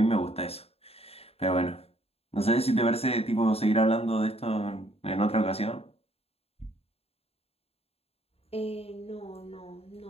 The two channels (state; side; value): late; right; 0.29 ms